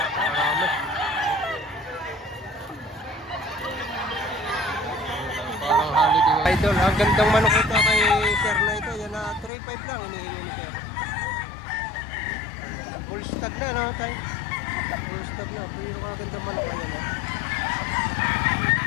Idol, ang gandang manok ito kay sir na ito. Yan na 3.5 lang hinihingi ni sir. Full stock na no tay. Full stock na. Pero ang gandang manok yan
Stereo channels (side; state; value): right; drops out; at 9.5 s